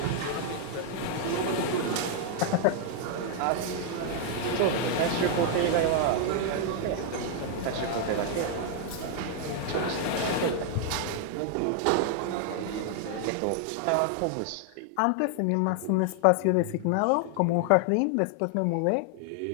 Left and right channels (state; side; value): different; both; correlation 0.00